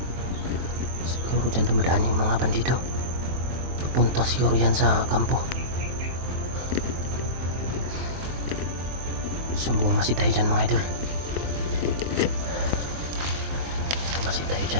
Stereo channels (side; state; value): left; late; 23 ms